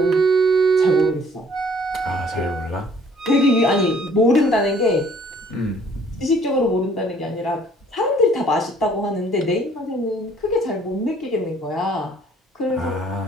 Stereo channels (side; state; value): both; normal; correlation 0.59